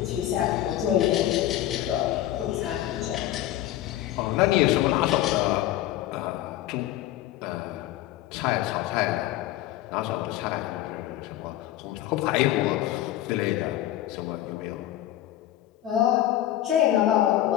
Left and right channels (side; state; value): right; quieter; 13.5 dB